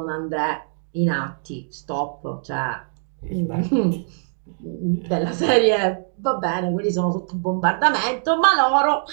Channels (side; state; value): left; silent; digital silence